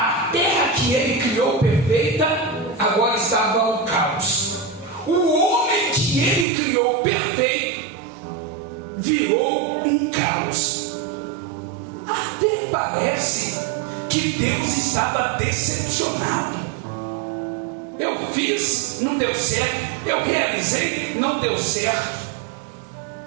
terra que Ele criou perfeita, agora estava o caos. O homem que Ele criou perfeito, virou um caos. Até parece que Deus estava decepcionado. Eu fiz, não deu certo. Eu realizei, não deu certo.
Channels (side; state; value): left; drops out; at 6.5 s